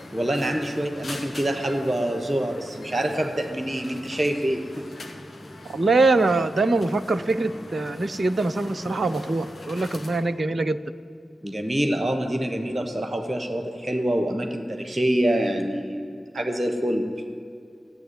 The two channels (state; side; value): normal; both; correlation 0.91